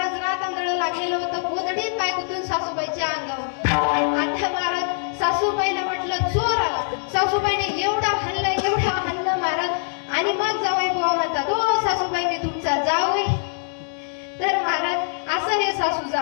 रात आंधळ लागलेलं होतं. गोधडीत पाय गुंतून सासूबाईच्या अंगावर. आता महाराज सासूबाईला म्हटलं चोर आला. सासूबाईने एवढा हल्ला महाराज. आणि मग जावई बुवा म्हणतात ओ सासूबाई मी तुमचा जावई. तर महाराज असं हे सासू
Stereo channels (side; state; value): right; silent; 63 dB below the other